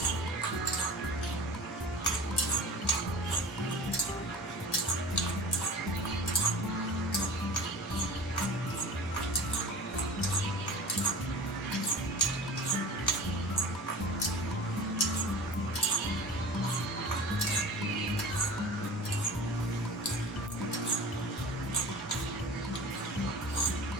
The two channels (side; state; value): both; normal; correlation 0.37